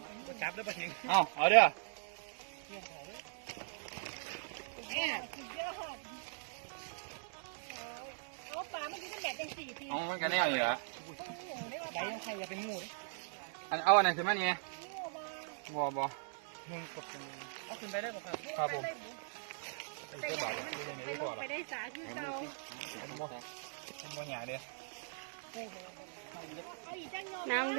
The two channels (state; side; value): silent; left; digital silence